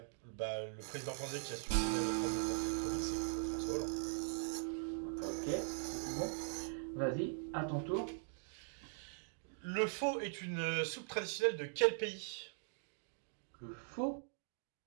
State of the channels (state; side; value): silent; left; digital silence